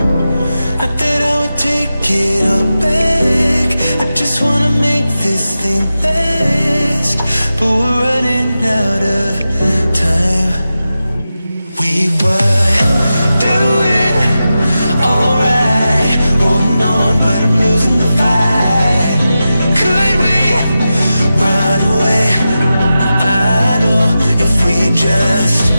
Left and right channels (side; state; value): both; inverted; correlation -0.92